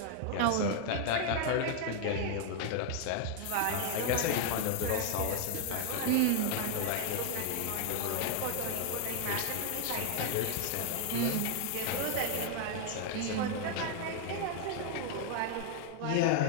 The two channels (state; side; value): different; both; correlation 0.00